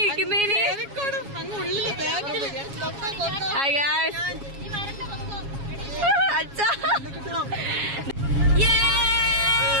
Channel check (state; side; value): late; left; 7.3 ms